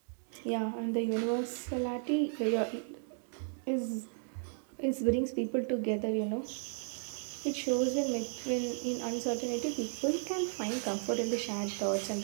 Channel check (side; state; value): left; silent; 55 dB below the other